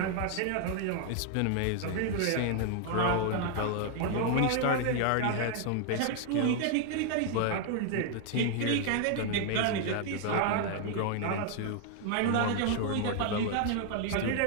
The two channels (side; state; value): both; different; correlation 0.00